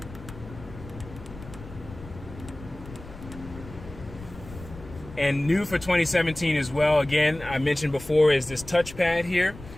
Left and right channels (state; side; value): noise; left; rumble, 15 dB below the sound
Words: And new for 2017 as well, again, I mentioned before, is this touchpad here,